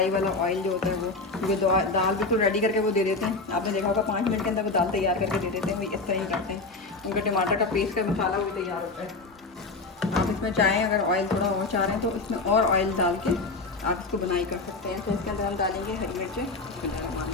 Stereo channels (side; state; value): right; quieter; 3.6 dB